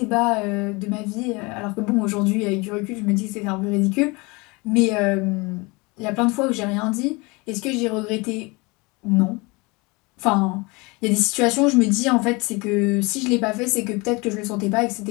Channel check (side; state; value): right; quieter; 26.2 dB